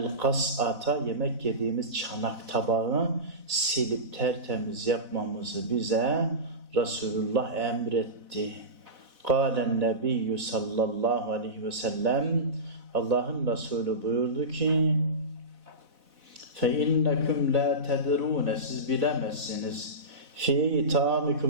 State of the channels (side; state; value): left; late; 4.0 ms